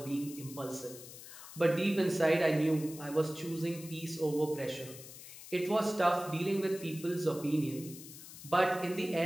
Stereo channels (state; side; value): noise; left; hiss, 15 dB below the sound